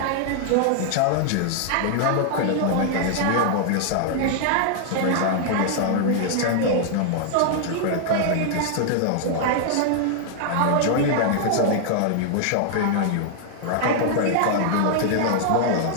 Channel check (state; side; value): different; both; correlation 0.00